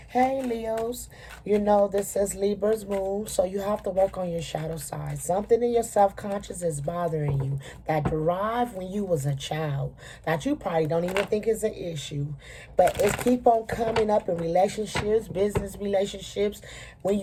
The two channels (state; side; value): identical; both; correlation 1.00